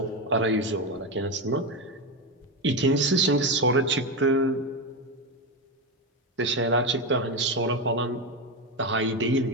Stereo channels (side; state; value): both; normal; correlation 0.12